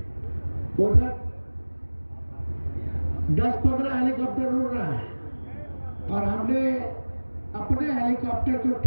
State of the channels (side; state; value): both; inverted; correlation -1.00